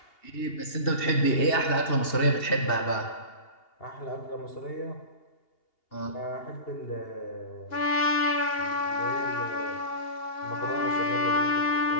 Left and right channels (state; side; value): late; right; 2.8 ms